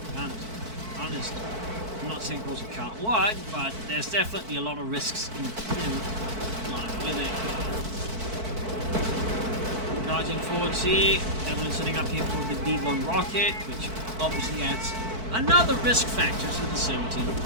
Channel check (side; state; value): left; late; 4.5 ms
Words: guns. Honest. I'm not saying it can't work, but there's definitely a lot of risks in line with it. Charging forward here, Evelynn setting up here for the D1 rocket, which obviously adds another risk factor to the 17